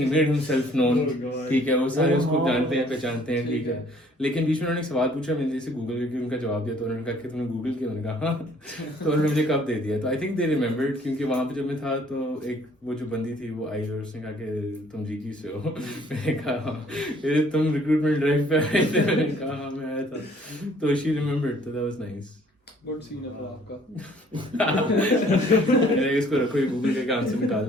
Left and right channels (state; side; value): normal; both; correlation 0.59